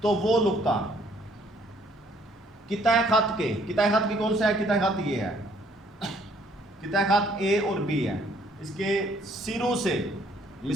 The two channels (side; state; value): both; normal; correlation 0.63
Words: तो वो नुक्ता कितने खत के, कितने खत की कौन सा है, कितने खत ये है, कितने खत ए और बी है, इसके सिरों से